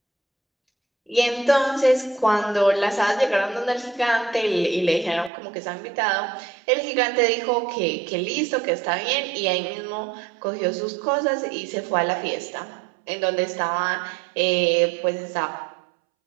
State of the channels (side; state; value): left; drops out; at 5.3 s